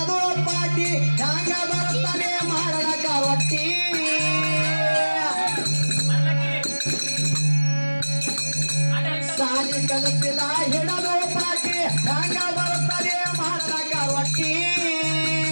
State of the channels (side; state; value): both; inverted; correlation -1.00